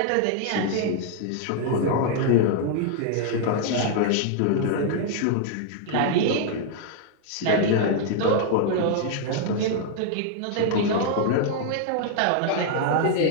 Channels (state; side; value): different; both; correlation 0.00